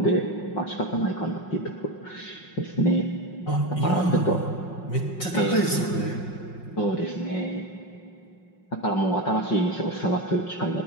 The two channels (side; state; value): right; late; 5.5 ms